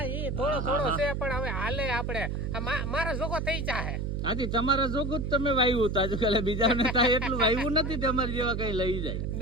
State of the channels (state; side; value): noise; right; hum, 2 dB below the sound